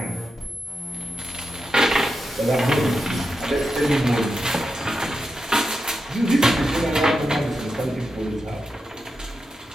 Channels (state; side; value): normal; both; correlation 0.88